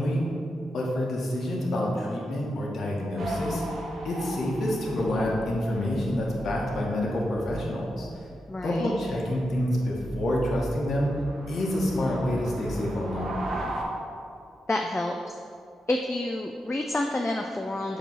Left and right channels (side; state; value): both; normal; correlation 0.87